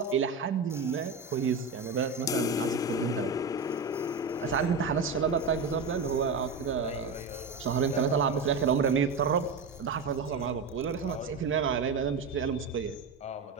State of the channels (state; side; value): quieter; left; 4.3 dB